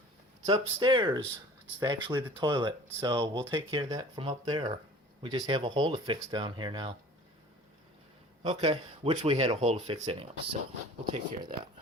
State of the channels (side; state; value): both; normal; correlation 0.44